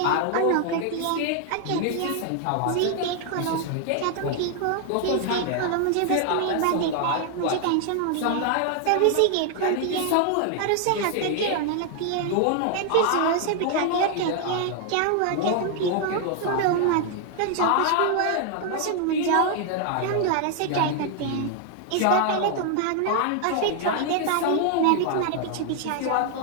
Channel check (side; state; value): both; different; correlation 0.00